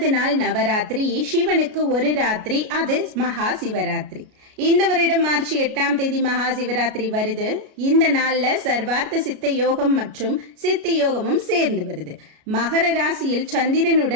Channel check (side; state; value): left; late; 33 ms